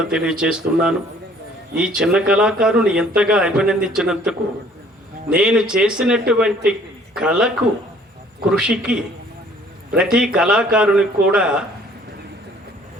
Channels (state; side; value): normal; both; correlation 0.57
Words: తెలియజేస్తున్నాను. ఈ చిన్న కళాకారుని ఎంతగా అభినందించినందుకు, నేను చేసినటువంటి కళకు కృషికి ప్రతి కళాకారునికి కూడా